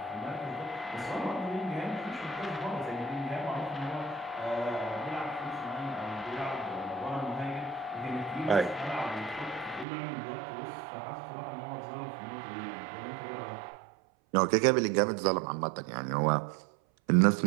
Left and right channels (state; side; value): drops out; left; at 9.9 s